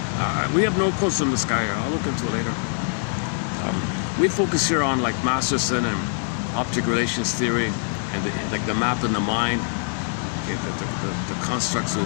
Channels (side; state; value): right; silent; 58 dB below the other